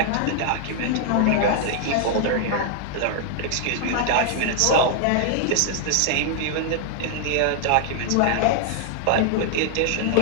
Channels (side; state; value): both; different; correlation 0.00